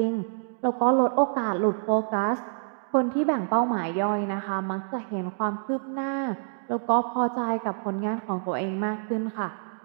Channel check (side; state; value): left; silent; digital silence